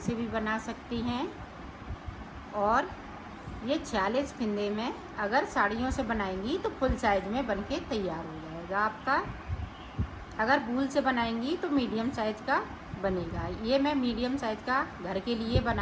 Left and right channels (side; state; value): both; identical; correlation 1.00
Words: भी बना सकती हैं और ये 46 फिंदे में अगर साड़ियों से बनाएंगी तो फुल साइज में बनके तैयार हो जाएगा आपका। अगर वूल से बनाएंगी तो मीडियम साइज का बनेगा। ये मैं मीडियम साइज का घर के लिए